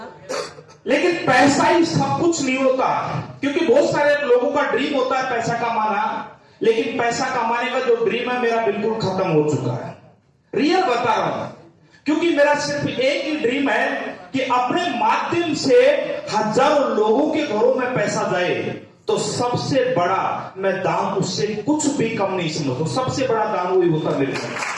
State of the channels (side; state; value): both; identical; correlation 1.00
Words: लेकिन पैसा ही सब कुछ नहीं होता। क्योंकि बहुत सारे लोगों का ड्रीम होता है पैसा कमाना, लेकिन पैसा कमाने का जो ड्रीम है मेरा बिल्कुल खत्म हो चुका है। रियल बता रहा हूं, क्योंकि मेरा सिर्फ एक ही ड्रीम है कि अपने माध्यम से हजारों लोगों के घरों में पैसा जाए तो सबसे बड़ा मैं दान उससे कुछ भी कम नहीं समझता। सबसे बड़ा दान वही होता मेरे लिए